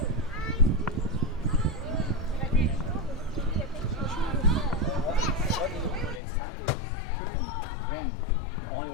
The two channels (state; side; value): drops out; right; at 6.2 s